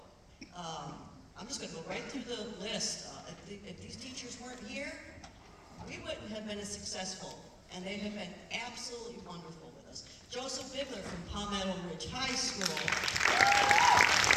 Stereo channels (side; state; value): both; identical; correlation 1.00